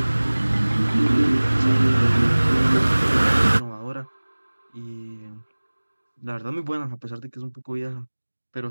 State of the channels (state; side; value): inverted; both; correlation -1.00